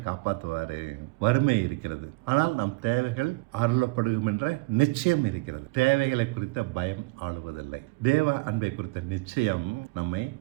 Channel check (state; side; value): quieter; left; 24.1 dB